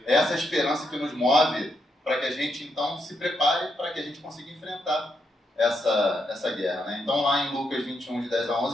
essa esperança que nos move para que a gente, então, se prepare para que a gente consiga enfrentar essa guerra, né? Então, lá em Lucas 21, de 10 a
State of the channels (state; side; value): normal; both; correlation 0.80